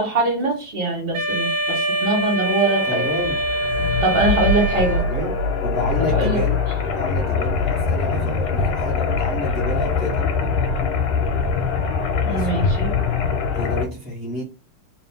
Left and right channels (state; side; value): normal; both; correlation 0.01